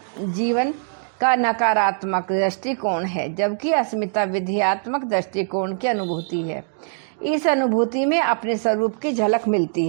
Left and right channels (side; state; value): left; silent; digital silence